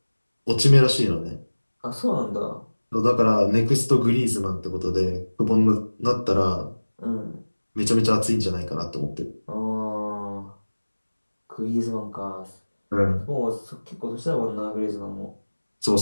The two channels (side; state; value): both; inverted; correlation -1.00